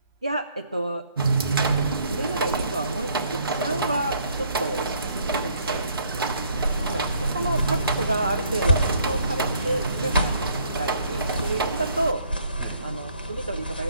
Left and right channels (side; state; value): both; inverted; correlation -0.65